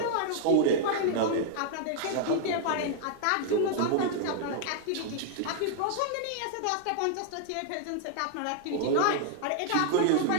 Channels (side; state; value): both; different; correlation 0.00